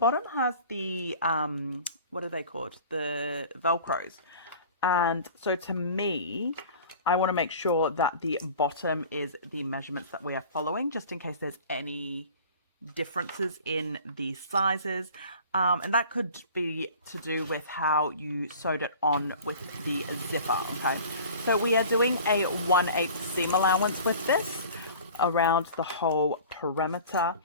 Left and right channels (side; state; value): both; inverted; correlation -0.43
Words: has the, what are they called? The Velcros. And so to me, I want to make sure that the bottom is the measurements that we are following, just in case there's any differences in the sizes. And that could be to do with how you sewed it on with the zipper, okay? So we are doing a 1/8 seam allowance with this around the whole perimeter.